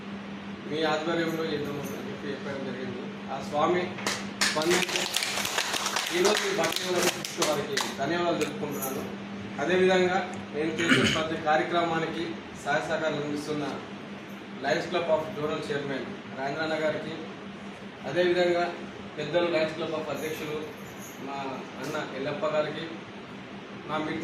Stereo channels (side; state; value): both; identical; correlation 1.00